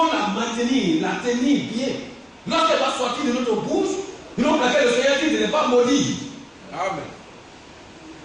la maintenir, la tenir bien. Lorsqu'elle va sortir de notre bouche, nous pour laquelle le Seigneur dit de ne pas maudire. Amen.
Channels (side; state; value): both; identical; correlation 1.00